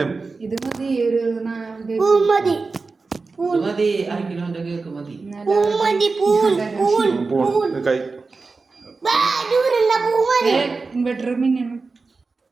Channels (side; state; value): left; quieter; 4.1 dB